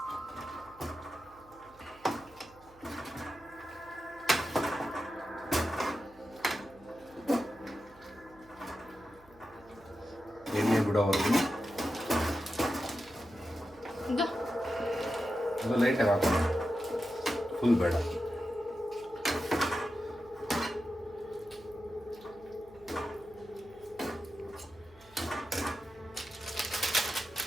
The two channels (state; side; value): noise; right; hum, 26 dB below the sound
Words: ಎಣ್ಣೆ ಬಿಡೋವರೆಗೂ ಅದು ಲೈಟಾಗಿ ಹಾಕೋಣ, ಫುಲ್ ಬೇಡ.